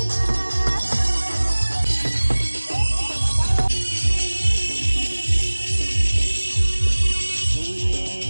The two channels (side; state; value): both; inverted; correlation -1.00